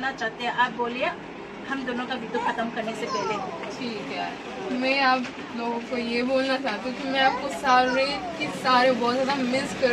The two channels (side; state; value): both; identical; correlation 1.00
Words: चाहते हैं, आप बोलिए हम दोनों का वीडियो खत्म करने से पहले। ठीक है, मैं आप लोगों को ये बोलना चाहती हूँ कि मैं आपको सारे बहुत ज्यादा मिस